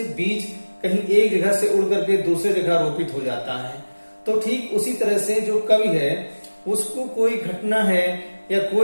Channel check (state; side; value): inverted; both; correlation -1.00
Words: बीज कहीं एक जगह से उड़ करके दूसरे जगह रोपित हो जाता है, तो ठीक उसी तरह से जो कवि है उसको कोई घटना है या